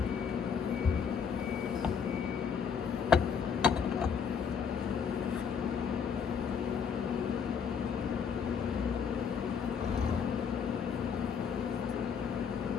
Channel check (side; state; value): right; quieter; 6.7 dB